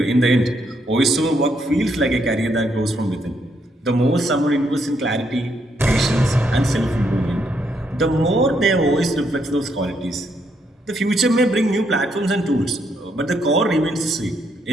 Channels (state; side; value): normal; both; correlation 0.75